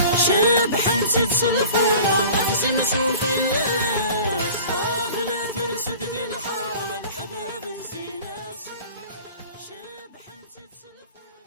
شبح نسيت صلفورة أقسم سوق الناس بلا ترسد دي الحرم الحباب الزيناس شبح نسيت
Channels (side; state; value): both; inverted; correlation -0.43